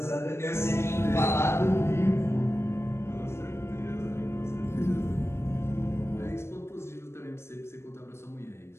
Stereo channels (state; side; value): late; right; 0.12 ms